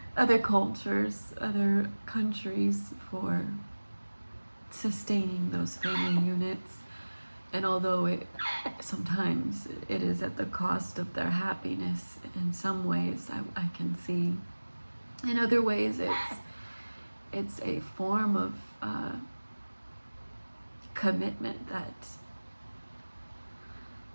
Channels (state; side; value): inverted; both; correlation -1.00